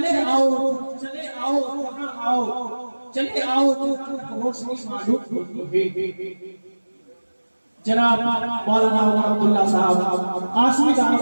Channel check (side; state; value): both; inverted; correlation -1.00